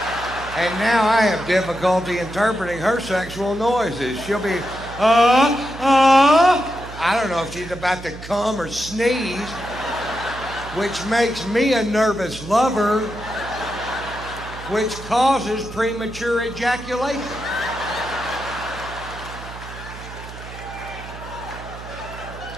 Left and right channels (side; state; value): right; noise; hum, 13 dB below the sound